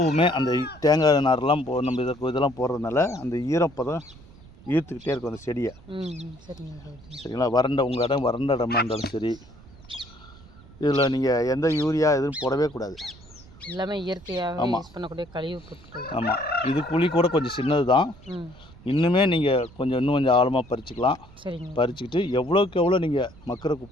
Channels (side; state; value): right; noise; rumble, 22 dB below the sound